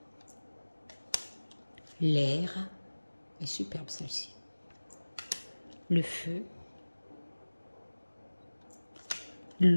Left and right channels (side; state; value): both; inverted; correlation -1.00